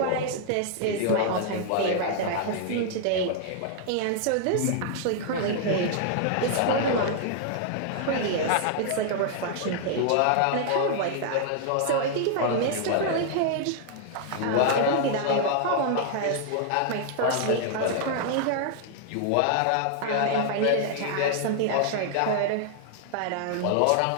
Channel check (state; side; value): different; both; correlation -0.01